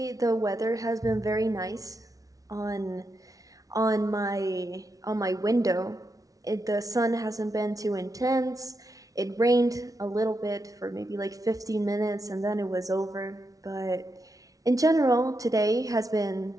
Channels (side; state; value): left; late; 0.18 ms